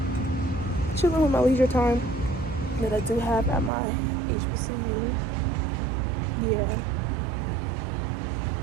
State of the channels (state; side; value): drops out; left; at 3.7 s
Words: chilling with my leisure time that I do have at my HBCU. Yeah.